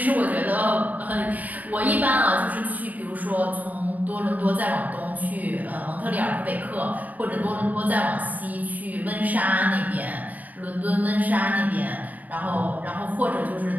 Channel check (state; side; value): late; left; 0.077 ms